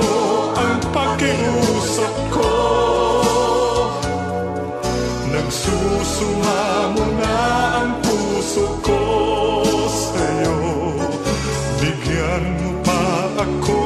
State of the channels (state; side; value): identical; both; correlation 1.00